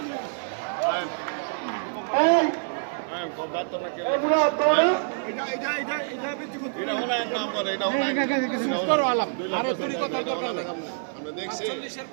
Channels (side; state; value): left; silent; 60 dB below the other